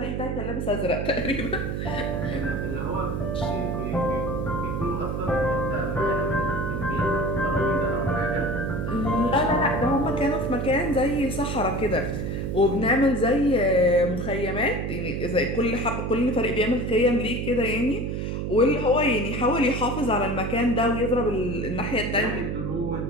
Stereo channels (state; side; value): noise; right; hum, 2 dB below the sound